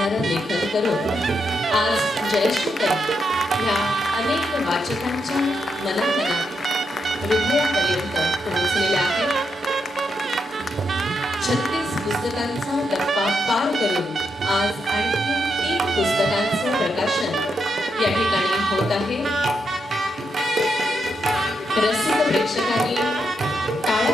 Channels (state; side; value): normal; both; correlation 0.82